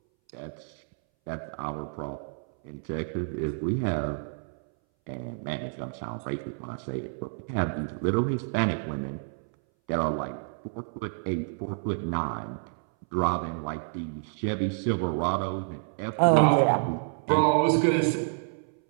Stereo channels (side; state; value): left; silent; 59 dB below the other